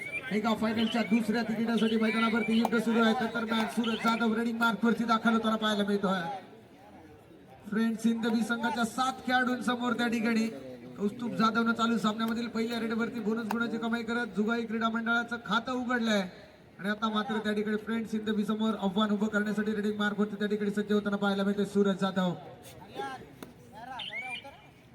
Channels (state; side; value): identical; both; correlation 1.00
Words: एका फायनलच्या दुसऱ्या तिकिटासाठी मैदानावरती युद्ध सुरू आहे. दरम्यान सूरज जाधव रनिंग मार्कवरती दाखल होताना पाहायला मिळतोय. फ्रेंड्स हिंदवी संघाच्या 7 खेळाडूंसमोर त्या ठिकाणी कौस्तुभ जाधवनं चालू सामन्यामधील पहिल्या रेडवरती बोनस गुणाची कमाई करत जुगाई क्रीडा मंडळाचं खातं उघडलंय आणि आता मात्र त्या ठिकाणी फ्रेंड्स हिंदवी समोर आव्हान उभं करण्यासाठी रेडिंग मार्कवरती त्या ठिकाणी सज्ज होताना पाहायला मिळतोय सूरज जाधव.